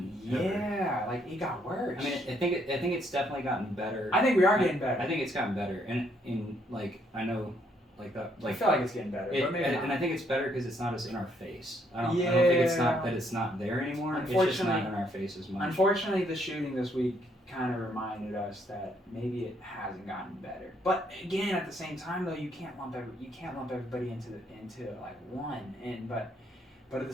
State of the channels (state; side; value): normal; both; correlation 0.71